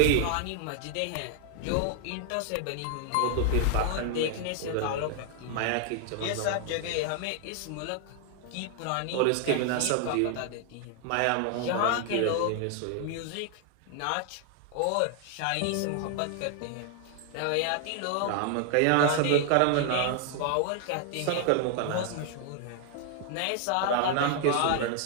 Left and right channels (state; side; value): different; both; correlation 0.00